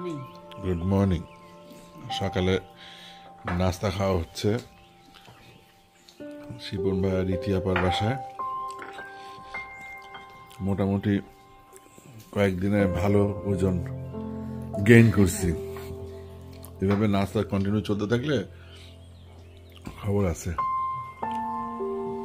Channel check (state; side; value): identical; both; correlation 1.00